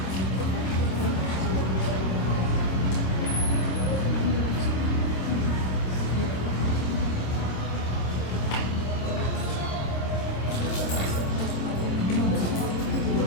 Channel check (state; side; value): late; right; 26 ms